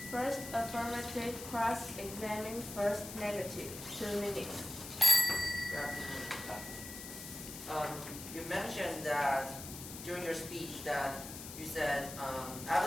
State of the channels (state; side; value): noise; left; hiss, 11 dB below the sound